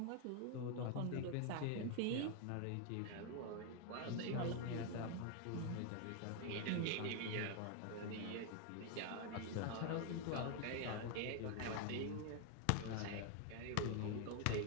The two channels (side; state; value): both; different; correlation 0.01